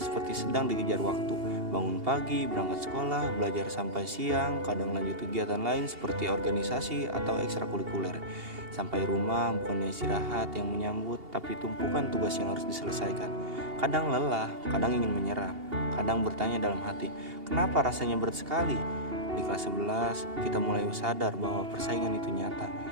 sedang dikejar waktu. Bangun pagi, berangkat sekolah, belajar sampai siang, kadang lanjut kegiatan lain seperti organisasi atau ekstrakurikuler. Sampai rumah bukannya istirahat yang menyambut, tapi tumpukan tugas yang harus diselesaikan. Kadang lelah, kadang ingin menyerah, kadang bertanya dalam hati, kenapa rasanya berat sekali? Di kelas 11, kita mulai sadar bahwa persaingan itu nyata.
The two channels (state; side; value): late; left; 2.8 ms